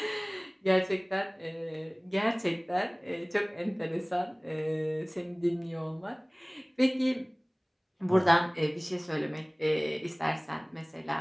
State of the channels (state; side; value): identical; both; correlation 1.00